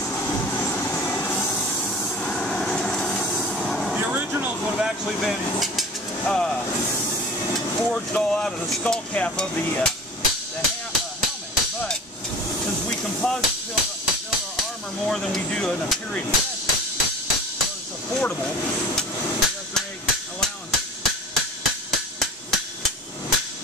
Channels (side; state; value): both; normal; correlation 0.39